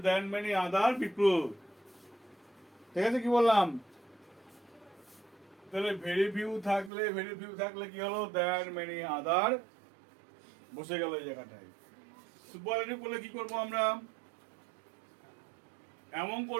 than many other people, ঠিক আছে, কি বললাম। তাহলে ভেরি ফিউ থাকলে, ভেরি ফিউ থাকলে কি হলো, দেন মেনি আদার বসে গেল এই জায়গাটায়। সুপারলেটিভ করলে কি করবো আমরা, এমন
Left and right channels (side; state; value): left; drops out; at 6.9 s